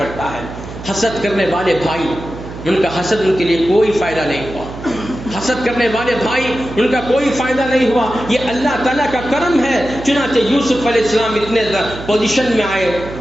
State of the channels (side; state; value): right; noise; hum, 12 dB below the sound